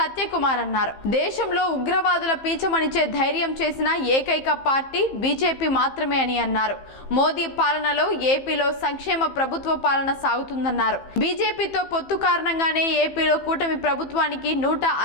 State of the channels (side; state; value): right; late; 15 ms